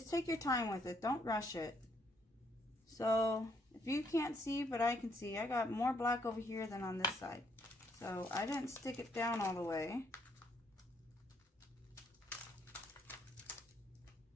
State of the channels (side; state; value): both; normal; correlation 0.71